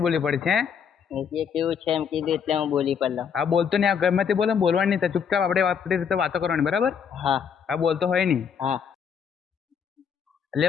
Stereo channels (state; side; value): quieter; right; 7.1 dB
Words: બોલી પડી છે. એ કેવું છે એમ કીધું એટલે હું બોલી પડલો. આ બોલતો નહીં, આ ગમે તે બોલે બોલવાની નહીં, ચૂપચાપ આપણે આપણી રીતે વાતો કરવાની, બરાબર? હા આ બોલતો હોય નહીં. હા એટલે